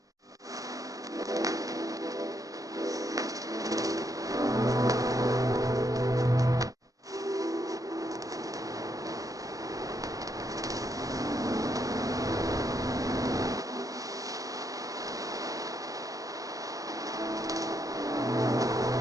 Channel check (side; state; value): left; late; 0.17 ms